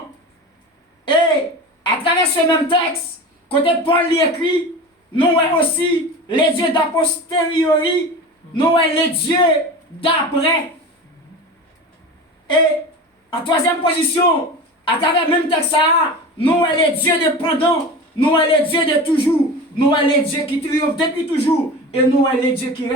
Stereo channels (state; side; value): normal; both; correlation 0.31